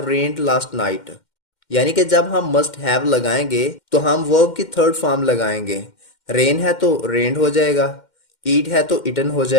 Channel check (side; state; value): right; late; 2.1 ms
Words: rained last night. यानी कि जब हम मस्ट हैव लगाएंगे तो हम वर्ब की थर्ड फॉर्म लगाएंगे। रेन है तो रेन्ड हो जाएगा, ईट है तो इटन हो